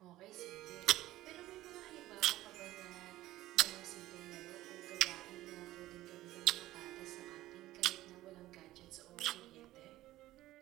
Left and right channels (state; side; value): quieter; left; 15.8 dB